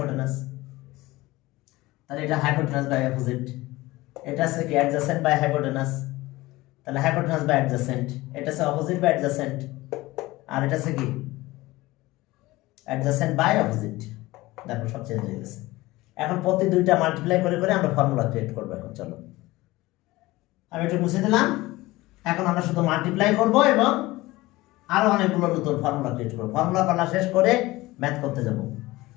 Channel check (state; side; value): quieter; right; 19.4 dB